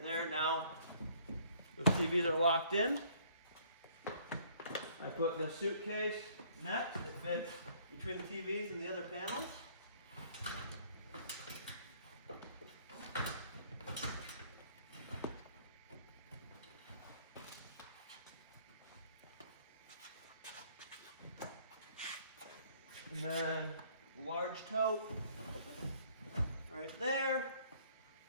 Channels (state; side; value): inverted; both; correlation -0.60